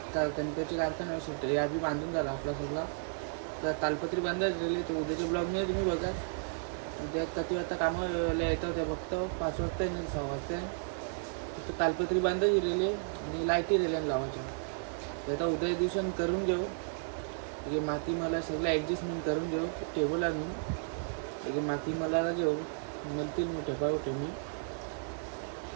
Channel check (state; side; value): silent; left; digital silence